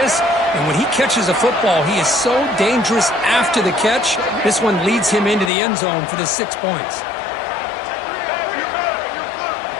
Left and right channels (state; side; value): drops out; right; at 5.5 s